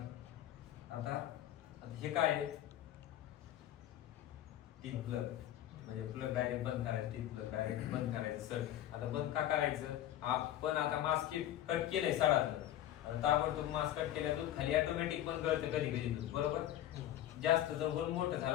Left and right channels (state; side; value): quieter; right; 12.5 dB